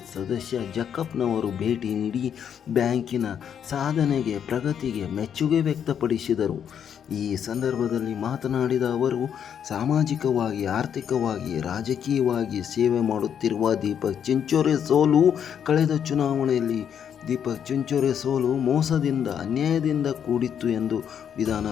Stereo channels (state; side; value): quieter; right; 8.5 dB